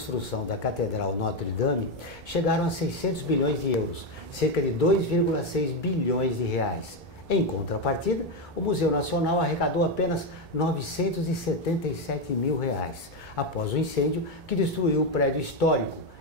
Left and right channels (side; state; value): both; normal; correlation 0.08